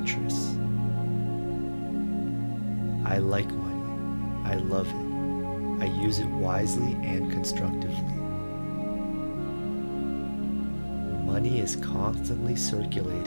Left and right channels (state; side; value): inverted; both; correlation -1.00